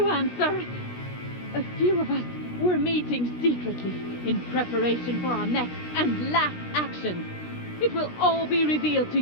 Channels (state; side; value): late; right; 16 ms